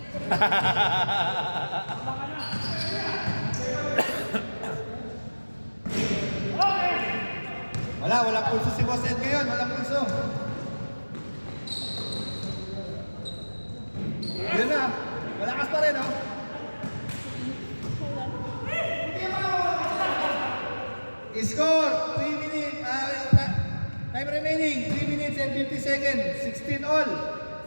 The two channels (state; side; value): inverted; both; correlation -1.00